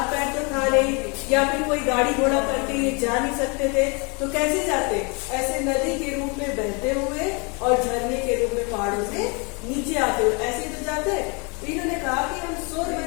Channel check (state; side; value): quieter; right; 31.9 dB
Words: पैर तो था नहीं या फिर कोई गाड़ी घोड़ा करके ये जा नहीं सकते थे, तो कैसे जाते? ऐसे नदी के रूप में बहते हुए और झरने के रूप में पहाड़ों से नीचे आते हुए ऐसे तो जाते। इन्होंने कहा कि हम शोर